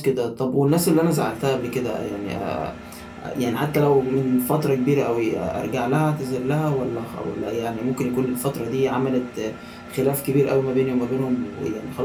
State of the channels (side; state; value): both; identical; correlation 1.00